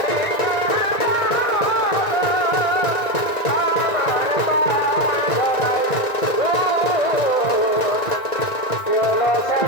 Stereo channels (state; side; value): late; right; 1.5 ms